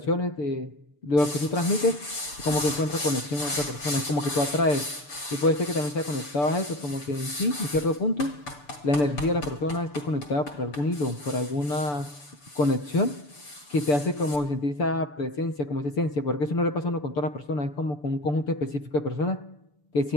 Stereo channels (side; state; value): right; late; 6.8 ms